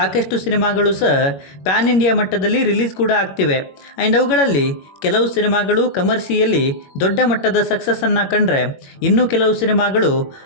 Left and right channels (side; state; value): right; late; 21 ms